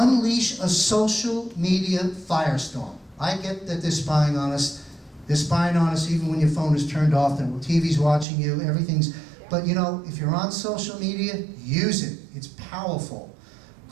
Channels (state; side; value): drops out; left; at 8.2 s